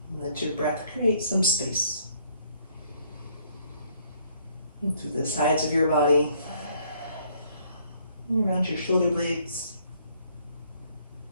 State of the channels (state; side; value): inverted; both; correlation -0.65